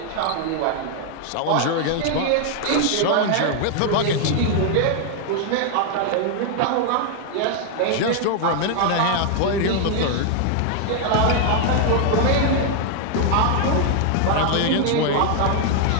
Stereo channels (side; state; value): both; different; correlation 0.00